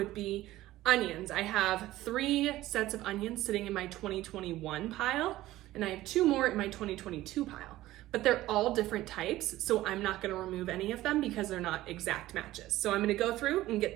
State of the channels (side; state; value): left; quieter; 15.9 dB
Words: be onions. I have 3 sets of onions sitting in my 2021 pile, and I have 2 more in my 2022 pile, but they're all different types, so I'm not gonna remove any of them because they're not exact matches. So I'm gonna go through and